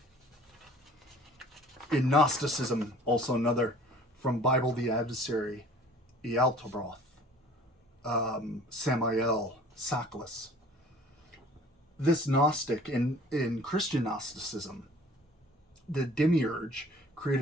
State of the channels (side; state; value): both; normal; correlation 0.50